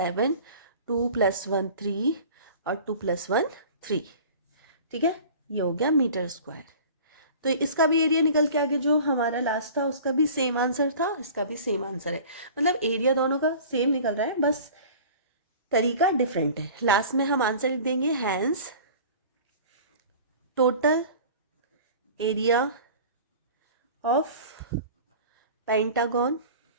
2 + 1 3 और 2 + 1 3, ठीक है। ये हो गया मीटर स्क्वायर। तो इसका भी एरिया निकल के आ गया, जो हमारा लास्ट था उसका भी सेम आंसर था, इसका भी सेम आंसर है, मतलब एरिया दोनों का सेम निकल रहा है, बस तरीका डिफरेंट है। लास्ट में हम आंसर लिख देंगे, hence total area of pentagon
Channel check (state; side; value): inverted; both; correlation -0.42